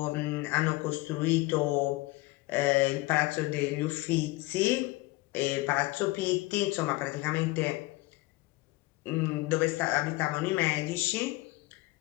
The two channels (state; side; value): quieter; right; 20.9 dB